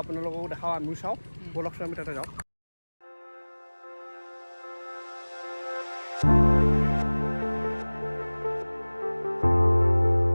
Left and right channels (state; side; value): inverted; both; correlation -1.00